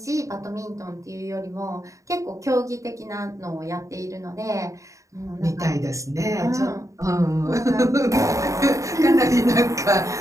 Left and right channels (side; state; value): left; late; 0.15 ms